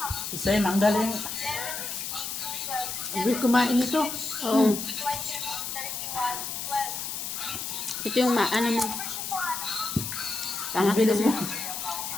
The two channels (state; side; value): noise; left; hiss, 5 dB below the sound